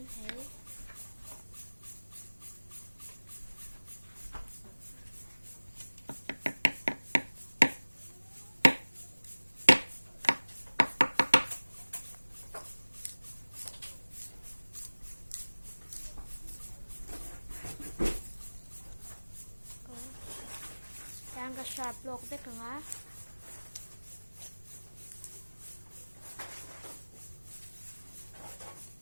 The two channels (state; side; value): inverted; both; correlation -1.00